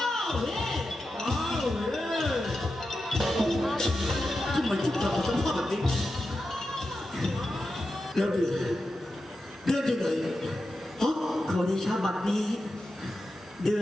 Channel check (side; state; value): both; normal; correlation 0.90